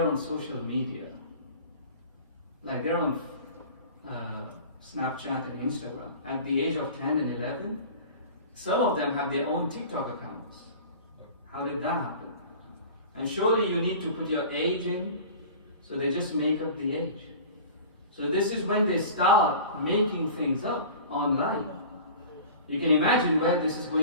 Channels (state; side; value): inverted; both; correlation -0.40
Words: on social media. Like they're on Snapchat and Instagram. At the age of 10 and 11, some of them have their own TikTok accounts. How did that happen? And surely you need to put your age in, so they just make up the age. So this is when they start making things up online. You can imagine where this is